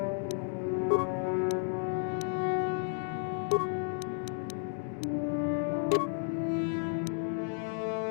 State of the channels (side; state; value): right; silent; 56 dB below the other